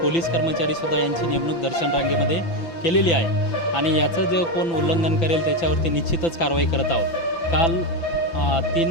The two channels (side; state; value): right; late; 5.9 ms